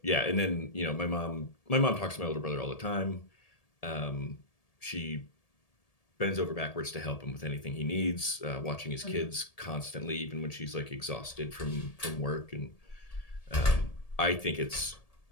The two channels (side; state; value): right; late; 1.8 ms